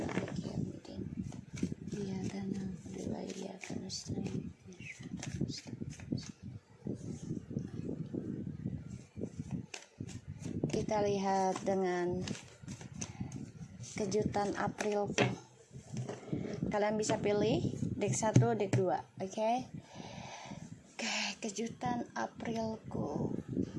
Maliki yaumiddin. Iyyaka na'budu wa iyyaka nasta'in. Kita lihat dengan kejutan Aprilku. Kalian bisa pilih deck 1, deck 2, oke? Oke, kejutan Aprilku.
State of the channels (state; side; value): identical; both; correlation 1.00